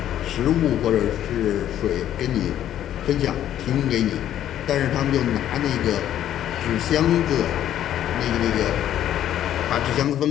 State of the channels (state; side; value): quieter; right; 11.3 dB